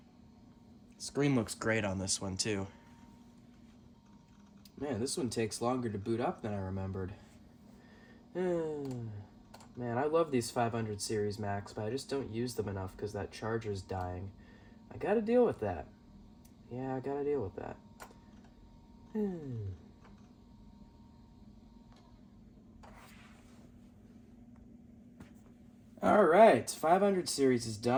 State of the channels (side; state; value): both; identical; correlation 1.00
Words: Screen looks great on this one too. Man, this one takes longer to boot up than I remembered. Man, I love these 500 series Macs, but I just don't use them enough because that charger's dying. I gotta deal with that. Yeah, I gotta deal with that. Alright, 500 series is